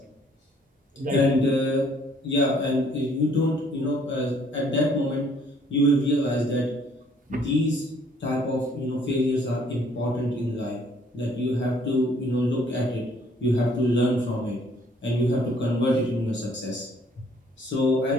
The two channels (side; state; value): both; normal; correlation 0.62